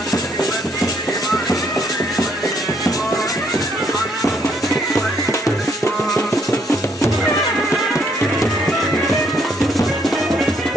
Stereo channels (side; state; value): both; normal; correlation 0.70